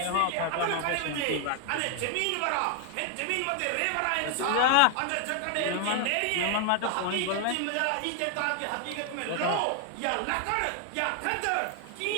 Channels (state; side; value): different; both; correlation 0.00